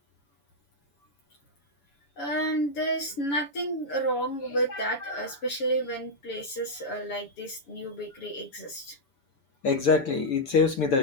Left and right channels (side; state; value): right; late; 7.1 ms